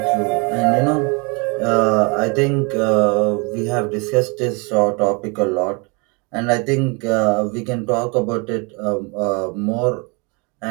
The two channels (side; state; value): left; quieter; 31.2 dB